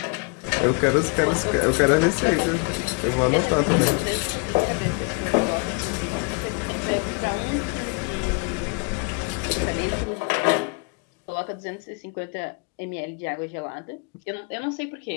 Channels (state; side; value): quieter; right; 31.7 dB